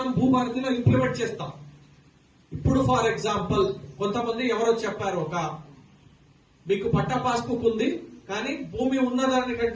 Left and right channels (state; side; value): identical; both; correlation 1.00